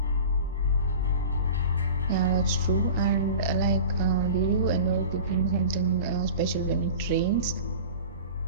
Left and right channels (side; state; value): both; inverted; correlation -0.37